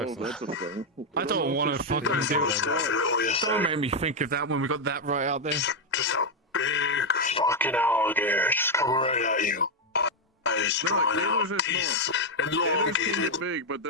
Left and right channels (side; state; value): both; normal; correlation 0.03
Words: if Texas. That's a thing. I don't want to fucking do it. Don't make me think of that when we got that right out there. Just a big fucking alligator just coming right at you. Eyes drawn out, teeth Gators elongated. get big, but